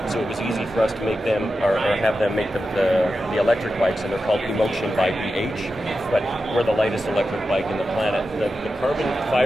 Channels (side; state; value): both; normal; correlation 0.91